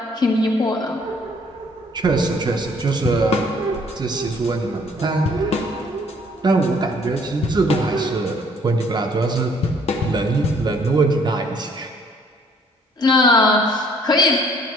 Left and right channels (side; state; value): both; normal; correlation 0.60